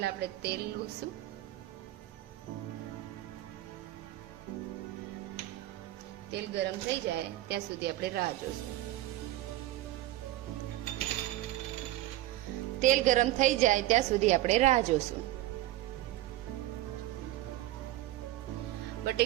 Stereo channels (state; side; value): quieter; left; 15.3 dB